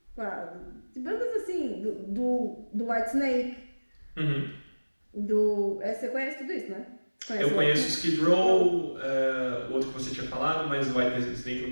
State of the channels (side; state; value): both; inverted; correlation -1.00